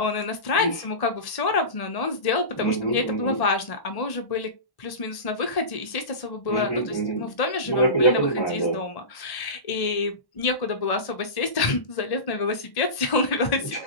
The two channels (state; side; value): late; right; 1.1 ms